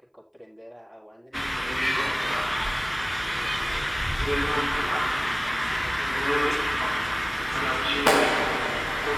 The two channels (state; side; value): identical; both; correlation 1.00